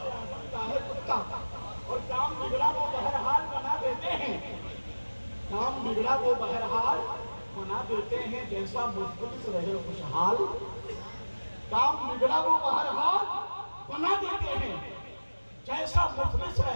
اعظم کا ہے کتا، اور کام بگڑا وہ بہرحال بنا دیتے ہیں، کام بگڑا وہ بہرحال بنا دیتے ہیں، جیسا مفلس رہے خوشحال، کام بگڑا وہ بہرحال بنا دیتے ہیں، جیسا مفلس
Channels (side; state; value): both; inverted; correlation -1.00